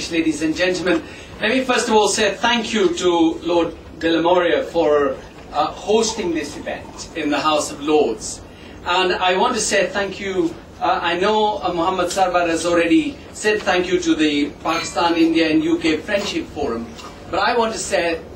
ladies and gentlemen, let me first of all say thank you to Lord de la Moria for hosting this event in the House of Lords. And I want to say thank you. I know Muhammad Sarwar has already said thank you to the Pakistan, India and UK Friendship Forum. But I want to say a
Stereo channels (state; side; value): identical; both; correlation 1.00